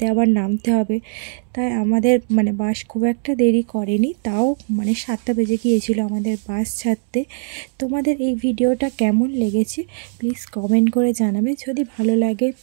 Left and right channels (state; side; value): silent; left; digital silence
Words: আবার নামতে হবে। তাই আমাদের মানে বাস খুব একটা দেরি করেনি, তাও মানে 7টা বেজে গিয়েছিল আমাদের বাস ছাড়তে। তোমাদের এই ভিডিওটা কেমন লেগেছে প্লিজ কমেন্ট করে জানাবে। যদি ভালো লাগে